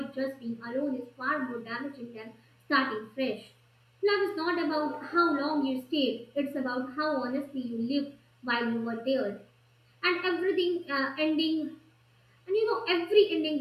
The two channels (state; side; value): identical; both; correlation 1.00